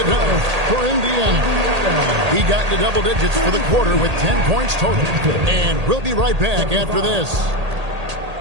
done for Indiana. He got into double digits for the quarter with 10 points total. And we'll be right back after this.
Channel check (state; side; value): late; left; 1.8 ms